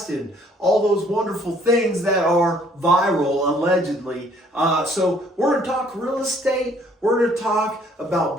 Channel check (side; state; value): both; normal; correlation 0.61